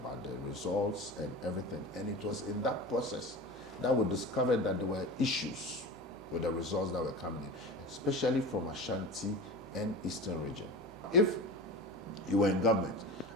the results and everything. And it was in that process that we discovered that there were issues with the results that were coming in, especially from Ashanti and Eastern region. If you were in government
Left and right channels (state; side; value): normal; both; correlation 0.31